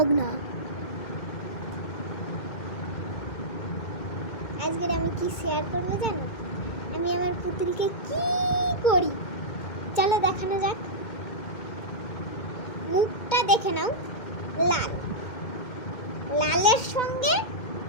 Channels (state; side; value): late; right; 2.1 ms